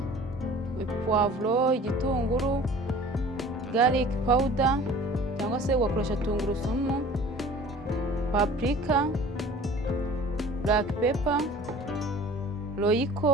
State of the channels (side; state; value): both; normal; correlation 0.45